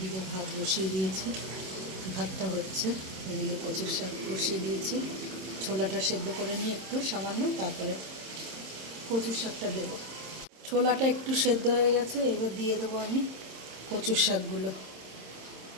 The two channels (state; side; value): late; left; 26 ms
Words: ভাত বসিয়ে দিয়েছি, ভাতটা হচ্ছে। এদিকে কচুর শাক বসিয়ে দিয়েছি, ছোলাটা সেদ্ধ করে নিয়ে একটু সামান্য, তারপরে কচুর শাকটা দেবো। ছোলাটা একটু সেদ্ধ হয়ে গেছে, এবার দিয়ে দেবো আমি কচুর শাকগুলো।